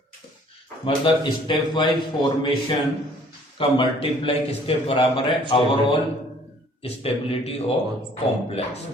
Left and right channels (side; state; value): both; normal; correlation 0.57